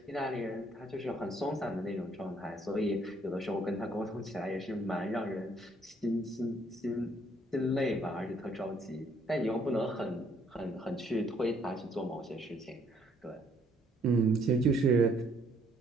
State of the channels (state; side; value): normal; both; correlation 0.66